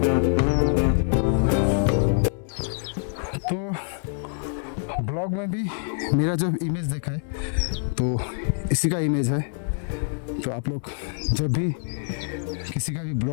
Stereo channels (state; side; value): silent; right; digital silence